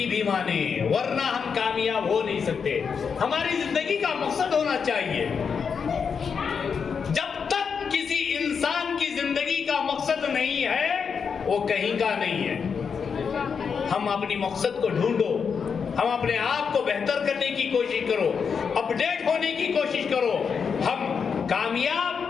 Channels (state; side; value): quieter; right; 6.2 dB